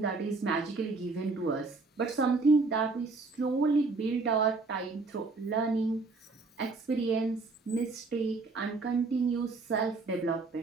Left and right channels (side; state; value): left; quieter; 3.8 dB